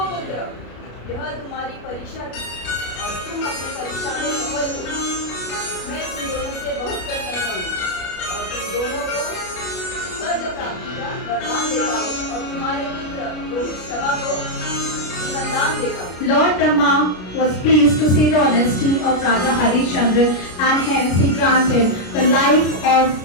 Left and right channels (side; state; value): right; late; 33 ms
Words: पुत्र, यह तुम्हारी परीक्षा थी और तुम अपने परीक्षा में सफल हो। मैं तुम दोनों से बहुत प्रसन्न हूँ और तुम दोनों को स्वर्ग प्राप्ति का वरदान देता हूँ और तुम्हारे पुत्र रोहित शवा को जीवन दान देता हूँ। Lord Brahma was pleased to see the honesty of Raja Harishchandra and hence he granted